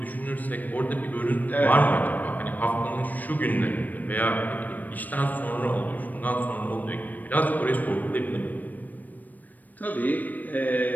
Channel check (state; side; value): late; right; 0.084 ms